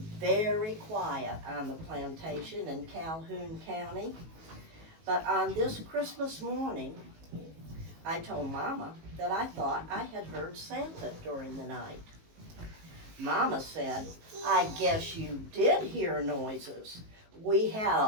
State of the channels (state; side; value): late; left; 19 ms